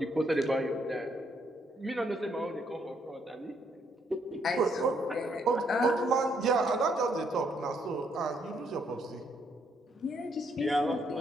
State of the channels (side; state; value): both; normal; correlation 0.72